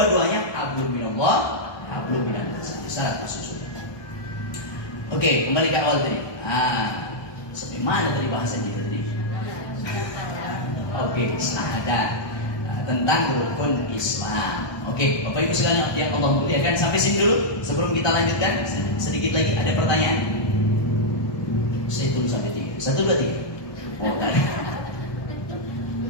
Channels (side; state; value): right; late; 1.2 ms